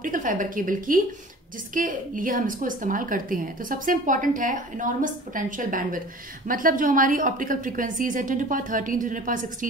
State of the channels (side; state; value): both; normal; correlation 0.43